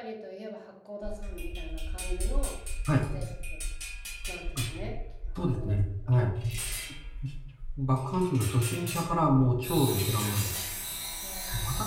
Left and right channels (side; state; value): both; identical; correlation 1.00